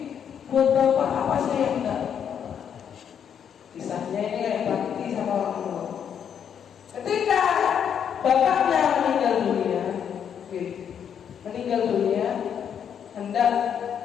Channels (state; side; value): quieter; right; 8.2 dB